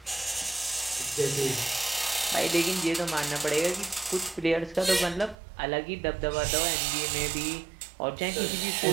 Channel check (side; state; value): left; drops out; at 5.4 s